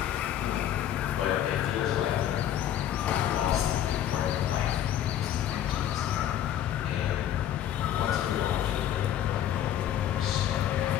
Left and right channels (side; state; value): right; quieter; 11.0 dB